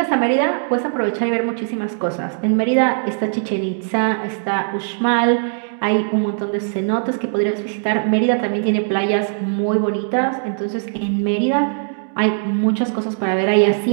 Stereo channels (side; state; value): left; silent; digital silence